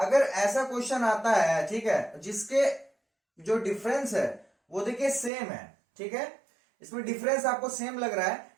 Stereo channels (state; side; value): drops out; left; at 5.3 s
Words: ऐसा क्वेश्चन आता है, ठीक है, जिसके जो डिफरेंस है वो देखिए सेम है, ठीक है, इसमें डिफरेंस आपको सेम लग रहा है,